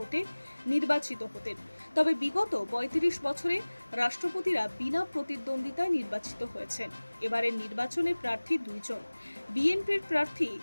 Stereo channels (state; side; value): inverted; both; correlation -1.00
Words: নির্বাচিত হতেন। তবে বিগত ৩৫ বছরে রাষ্ট্রপতিরা বিনা প্রতিদ্বন্দ্বিতায় নির্বাচিত হয়েছেন। এবারের নির্বাচনে প্রার্থী দুইজন। বিএনপির প্রার্থী